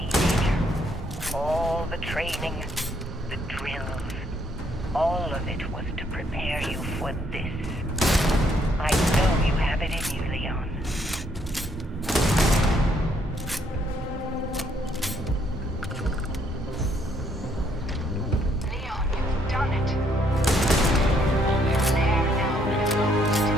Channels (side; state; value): both; normal; correlation 0.70